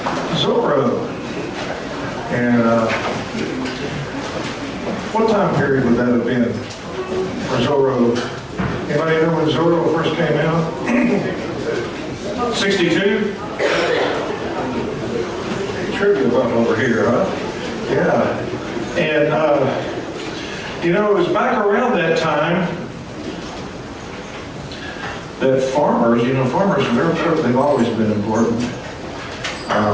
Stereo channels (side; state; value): both; identical; correlation 1.00